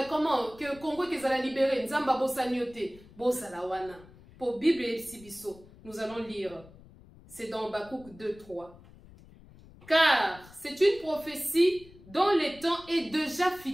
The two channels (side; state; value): left; noise; rumble, 22 dB below the sound